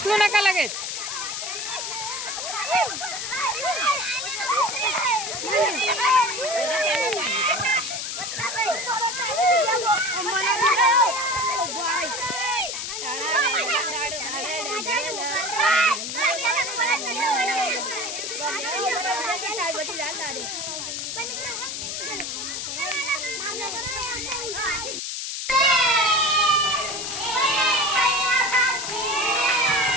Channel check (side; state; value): left; noise; hiss, 4 dB below the sound